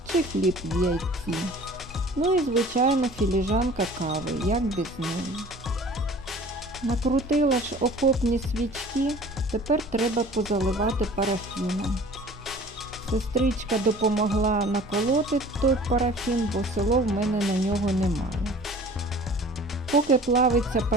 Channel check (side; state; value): both; normal; correlation 0.46